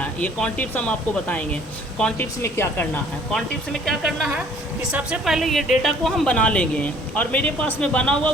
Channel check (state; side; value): normal; both; correlation 0.56